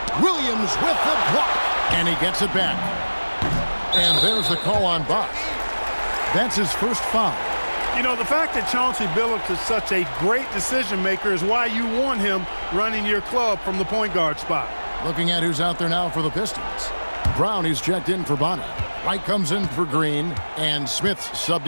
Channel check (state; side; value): inverted; both; correlation -1.00